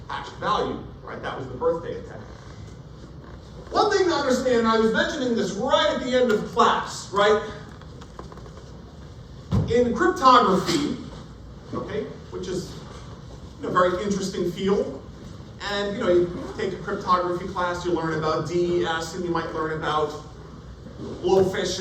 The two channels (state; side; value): identical; both; correlation 1.00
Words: hashed value, right? That was the birthday attack. One thing to understand, I was mentioning this right at the end of class, right? In cryptography, okay, which is a very interesting field, and you take a cryptography class, you learn about DES, and you might learn about